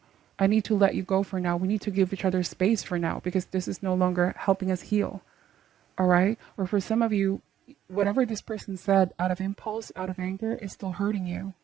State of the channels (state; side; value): quieter; left; 10.8 dB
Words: I need to let you go for now. We need to give each other space for now, because this is no longer helping us heal. All right? Or for some of you, whatever this person said out of impulse, out of anger, is still hurting you.